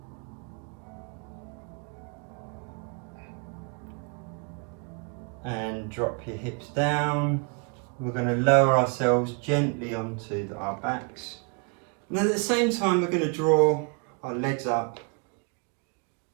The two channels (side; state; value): left; quieter; 34.9 dB